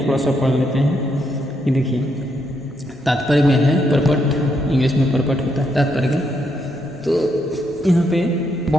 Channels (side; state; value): both; normal; correlation 0.77